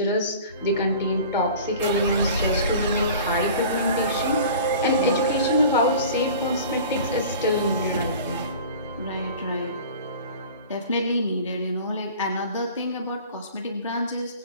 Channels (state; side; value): inverted; both; correlation -0.41